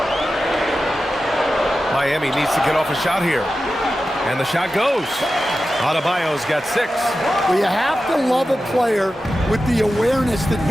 Miami needs to get off a shot here. And the shot goes. Adebayo's got 6. Well, you have to love a player with the awareness that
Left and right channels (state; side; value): normal; both; correlation 0.93